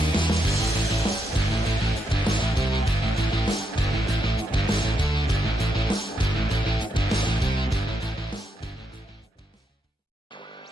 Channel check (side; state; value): both; normal; correlation 0.80